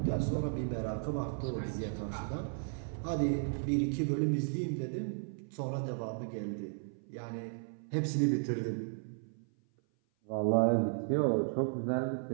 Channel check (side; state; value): left; silent; 55 dB below the other